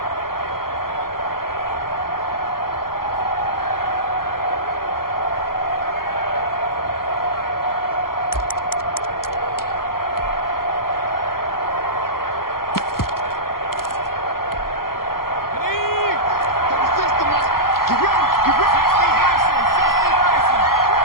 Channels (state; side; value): late; right; 0.92 ms